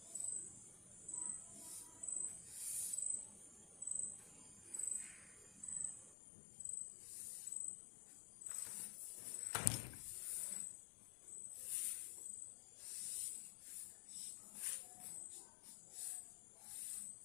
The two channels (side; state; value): right; drops out; at 6.2 s